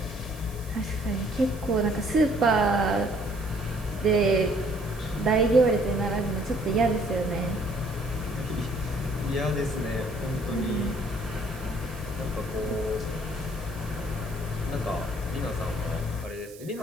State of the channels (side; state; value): right; noise; hiss, 20 dB below the sound